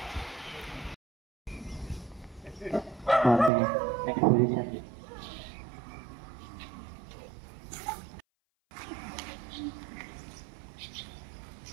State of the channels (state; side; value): drops out; left; at 3.5 s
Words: आते हैं नेक्स्ट पोजीशन।